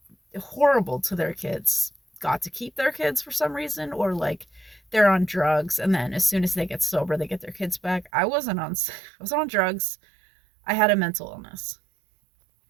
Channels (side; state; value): left; drops out; at 8.1 s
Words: horrible to their kids got to keep their kids for some reason, or like they're on drugs and then as soon as they get sober they get their kids back. I was on drugs. I had a mental illness.